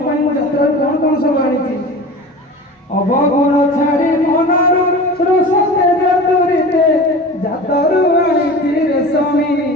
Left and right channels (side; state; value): both; normal; correlation 0.35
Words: পাই মু যাত্রার কোন কোন সব আনিছি অবগুণ ছাড়ি মনরু রোষ তেজ তুরিতে জাতরু আনিছি রেশমী